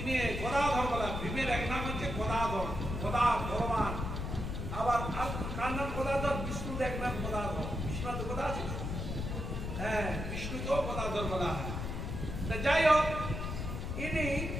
গদাধর বলা। ভীমের এক নাম হচ্ছে গদাধর, গদা ভগবান। আবার কার নাম গদাধর? বিষ্ণুর এক নাম গদাধর। বিষ্ণু তো গদা আছে, হ্যাঁ, বিষ্ণুকেও গদাধর বলা হয়। যাই হোক, ইনি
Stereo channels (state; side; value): noise; left; rumble, 4 dB below the sound